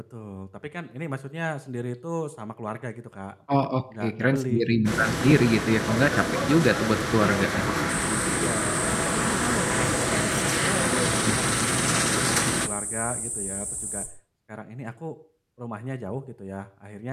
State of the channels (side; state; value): both; identical; correlation 1.00